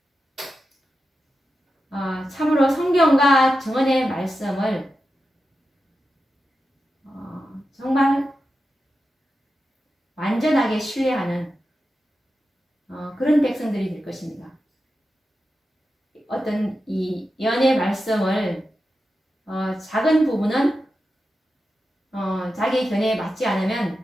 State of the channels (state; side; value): normal; both; correlation 0.90